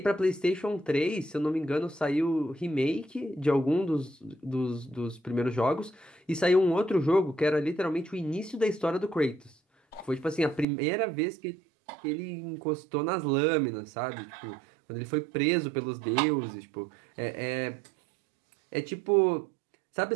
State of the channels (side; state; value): left; drops out; at 10.7 s